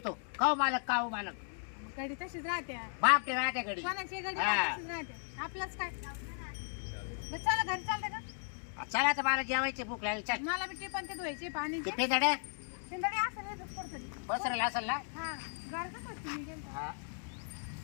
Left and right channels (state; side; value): silent; right; 54 dB below the other